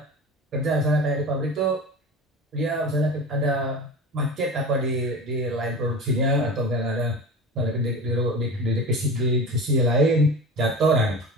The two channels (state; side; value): normal; both; correlation 0.32